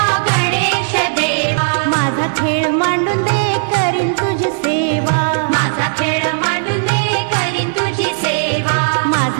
गणेश देवा, माझा खेळ मांडून दे करीन तुझी सेवा, माझा खेळ मांडून दे करीन तुझी सेवा,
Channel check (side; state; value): left; silent; digital silence